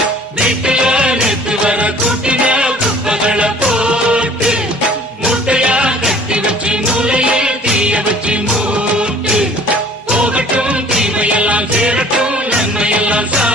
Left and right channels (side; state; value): both; normal; correlation 0.51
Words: வீட்டுல நேற்று வர கூட்டின குப்பைகளை போட்டு மூட்டையா கட்டி வச்சு மூளையே தீய வச்சு மூட்டு போகட்டும் தீமையெல்லாம் சேரட்டும் நன்மையெல்லாம்